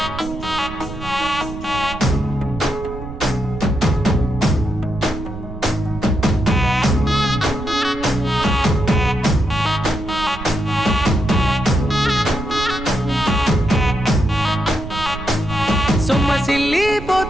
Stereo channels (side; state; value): right; noise; rumble, 11 dB below the sound